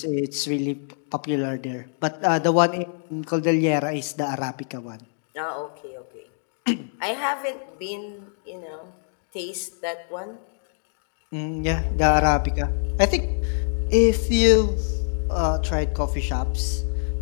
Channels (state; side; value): silent; right; digital silence